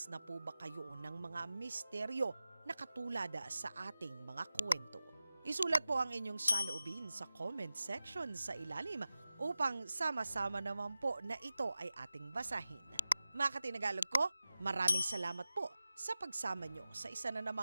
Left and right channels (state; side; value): inverted; both; correlation -0.95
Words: na po ba kayo ng mga misteryo na katulad sa ating mga kwento? Isulat po ang inyong saloobin sa comment section sa ilalim upang sama-sama naman po na ito ay ating basahin. Mga katinagalog ko, maraming salamat po sa pagsama nyo sa isa na